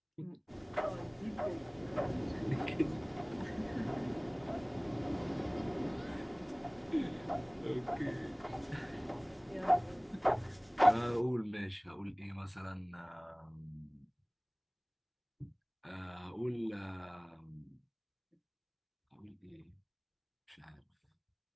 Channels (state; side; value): identical; both; correlation 1.00